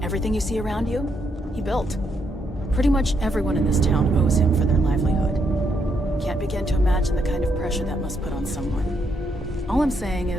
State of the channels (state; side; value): normal; both; correlation 0.76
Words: Everything you see around you, he built. Pretty much everyone in this town owes him for their livelihood. Can't begin to imagine the kind of pressure that must put on someone. All I'm saying